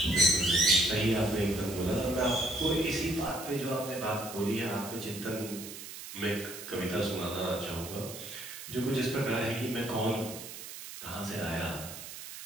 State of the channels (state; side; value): noise; right; hiss, 11 dB below the sound